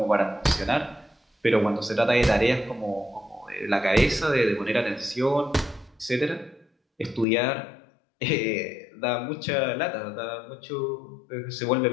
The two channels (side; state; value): right; drops out; at 7.2 s